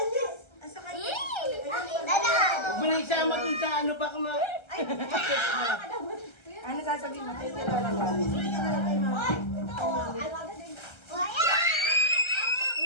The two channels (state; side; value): late; right; 1.3 ms